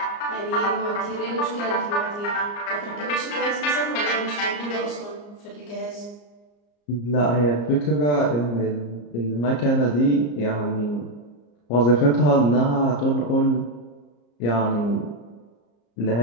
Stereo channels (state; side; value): late; right; 34 ms